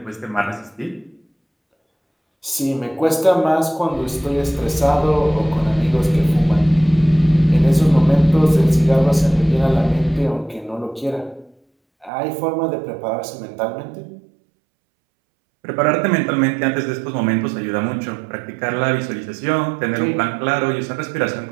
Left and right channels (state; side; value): drops out; left; at 12.1 s